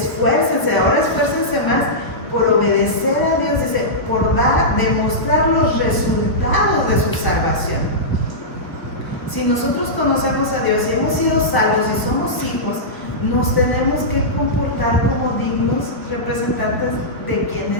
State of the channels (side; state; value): right; late; 1.4 ms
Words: ahora esfuércense más por obedecer a Dios, dice, por demostrar los resultados de su salvación. Si nosotros conocemos a Dios y hemos sido salvos y somos hijos, nos tenemos que comportar como dignos representantes de quien